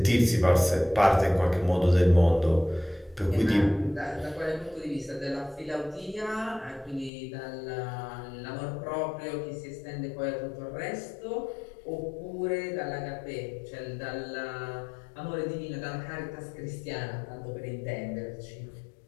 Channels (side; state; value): right; drops out; at 7.1 s